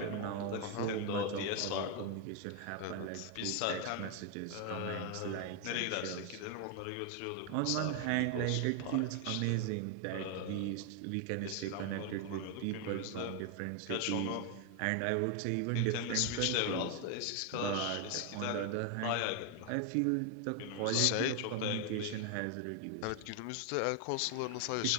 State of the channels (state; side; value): different; both; correlation 0.01